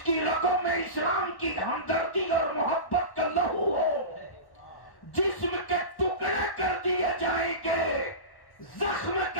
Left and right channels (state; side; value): late; right; 1.1 ms